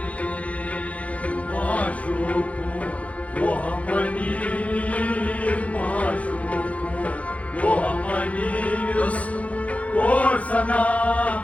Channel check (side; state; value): right; late; 0.066 ms